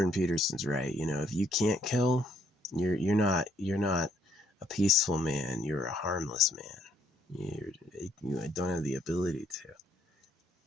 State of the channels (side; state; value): both; normal; correlation 0.68